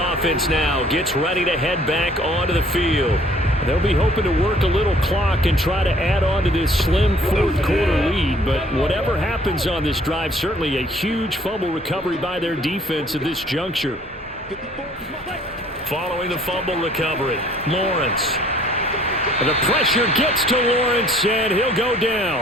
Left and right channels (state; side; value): normal; both; correlation 0.57